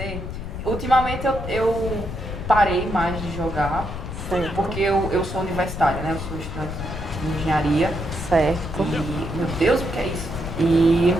Ultimamente eu parei mais de jogar, Certo. porque eu sou universitária, né? Eu sou estudante de engenharia. Certo. E, meu Deus, o que é isso? E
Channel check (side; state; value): left; noise; rumble, 7 dB below the sound